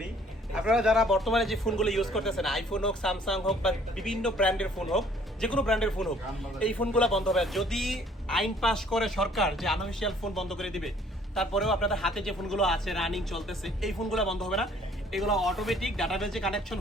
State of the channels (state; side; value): normal; both; correlation 0.59